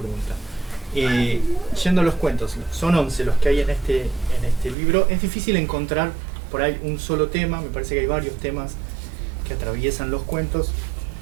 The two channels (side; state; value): left; drops out; at 4.8 s